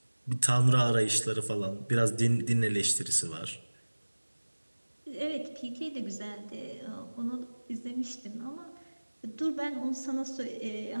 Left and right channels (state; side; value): inverted; both; correlation -1.00